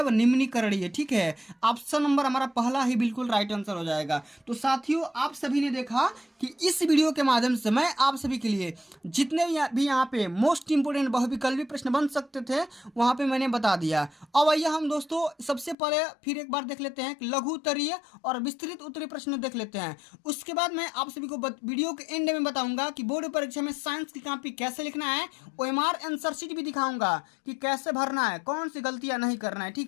निम्नीकरणीय। ठीक है, ऑप्शन नंबर हमारा पहला ही बिल्कुल राइट आंसर हो जाएगा। तो साथियों आप सभी ने देखा कि इस वीडियो के माध्यम से मैं आप सभी के लिए जितने भी यहाँ पे मोस्ट इंपोर्टेंट बहुविकल्पी प्रश्न बन सकते थे वहाँ पे मैंने बता दिया। अब आइए हम दोस्तों सबसे पहले फिर एक बार देख लेते हैं कि लघु उत्तरीय और विस्तृत उत्तरीय प्रश्न देख लेते हैं। उसके बाद मैं आप सभी को वीडियो के एंड में बताऊंगा कि बोर्ड परीक्षा में साइंस की कॉपी कैसे लिखना है, OMR आंसर शीट भी दिखाऊंगा कि कैसे भरना है, कौन सी गलतियां नहीं करना है।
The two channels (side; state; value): right; drops out; at 15.8 s